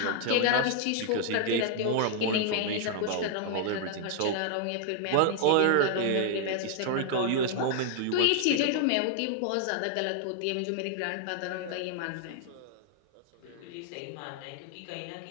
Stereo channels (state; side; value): different; both; correlation 0.00